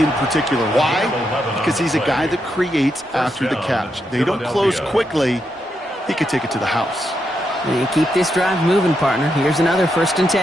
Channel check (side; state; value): both; normal; correlation 0.82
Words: particular. Why? Because he's a guy that creates after the catch. They don't close quickly. He could take it to the house. And you keep this drive moving, partner. Here's another 1st and